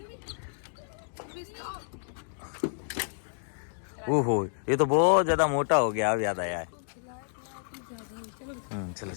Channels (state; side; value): silent; right; digital silence